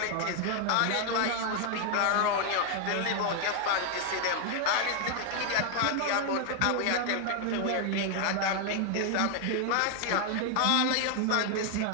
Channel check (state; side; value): different; both; correlation 0.00